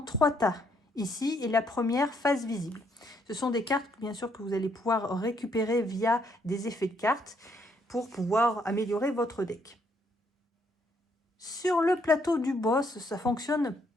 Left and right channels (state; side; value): normal; both; correlation 0.71